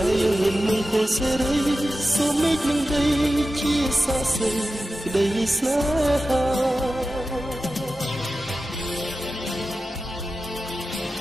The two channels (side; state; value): both; normal; correlation 0.93